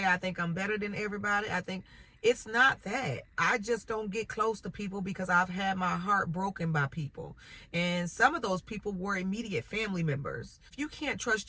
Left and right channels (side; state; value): both; identical; correlation 1.00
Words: I think I'm better than everybody. I think it's not that. I just don't get close to people because I've had my heart broken by people. And some of those people were immediate family members. If you can't trust